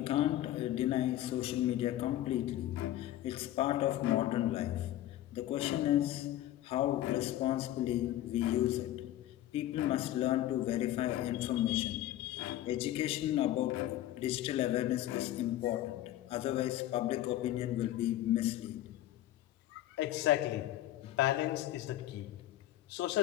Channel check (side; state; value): right; quieter; 13.8 dB